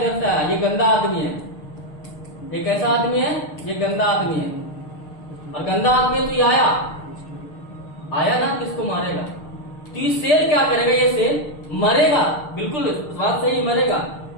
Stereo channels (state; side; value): late; right; 6.6 ms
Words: से आया, ये गंदा आदमी है, ये कैसा आदमी है, ये गंदा आदमी है, और गंदा आदमी है तो ये आया ना, तो इसको मारेगा। तो ये सेल क्या करेगा, ये सेल मरेगा, बिल्कुल बात सही, मरेगा।